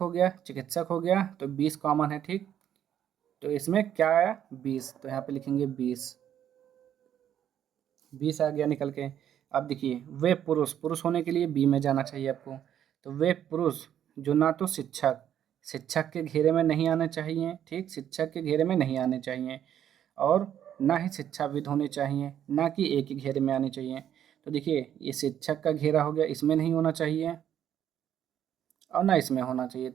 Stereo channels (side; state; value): left; quieter; 10.1 dB